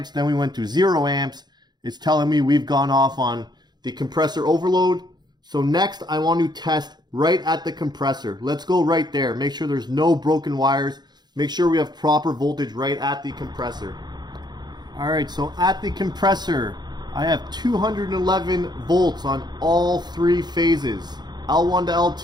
then we went to 0 amps, is telling me we've gone off on the compressor overload. So next I want to test right at the compressor. Let's go right there. Make sure there's no broken wires. Make sure we have proper voltage right at the compressor. Alright, so at the compressor, I have 211 volts on all three phases. L1 to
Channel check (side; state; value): left; late; 0.20 ms